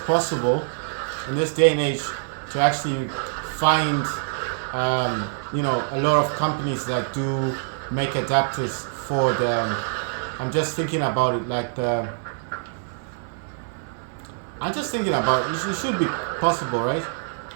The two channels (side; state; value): left; silent; 62 dB below the other